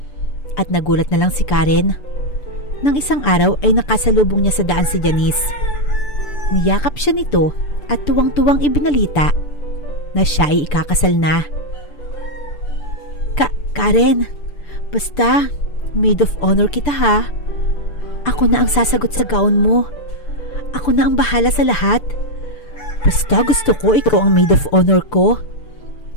At nagulat na lang si Karen nang isang araw ay nakasalubong niya sa daan si Janice. Niyakap siya nito at tuwang-tuwang ibinalita na siya ay ikakasal na. Karen, basta maid of honor kita ha. Ako na ang sasagot sa gown mo. Ako na ang bahala sa lahat. Basta gusto ko ikaw ang maid of honor ko.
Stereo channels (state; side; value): late; right; 6.8 ms